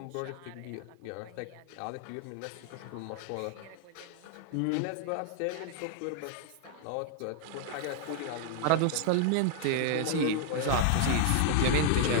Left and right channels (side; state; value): both; different; correlation 0.00